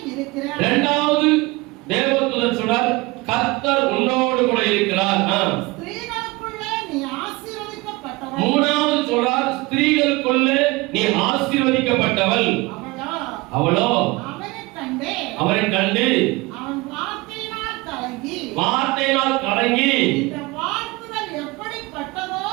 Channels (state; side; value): quieter; left; 23.0 dB